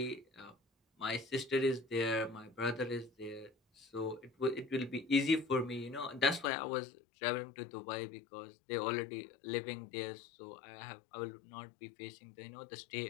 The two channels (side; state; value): right; drops out; at 6.5 s